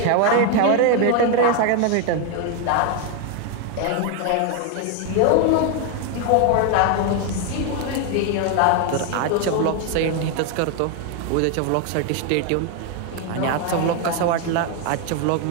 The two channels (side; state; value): both; different; correlation 0.01